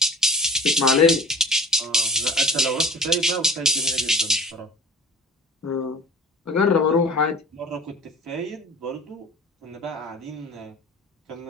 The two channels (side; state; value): both; normal; correlation 0.43